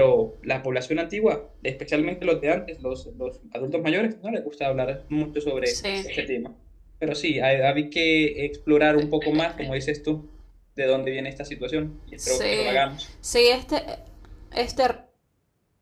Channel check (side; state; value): both; identical; correlation 1.00